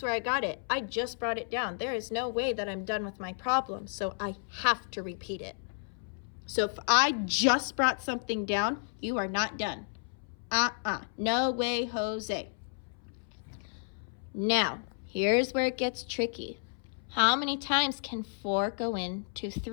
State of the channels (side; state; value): right; silent; 57 dB below the other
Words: where I got it? I just brought it down. There is no way that I'm done with my problem, so I have to repeat it. So if I just brought something down, you are not done. No way, Jose. Now, here's where it gets tricky. How many times can 4 go into